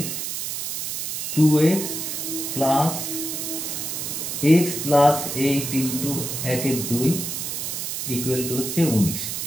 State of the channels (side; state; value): right; noise; hiss, 4 dB below the sound